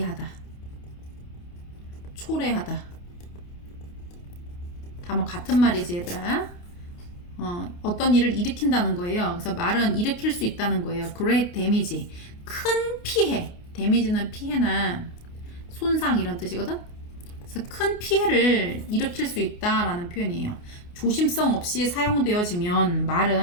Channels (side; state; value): right; late; 28 ms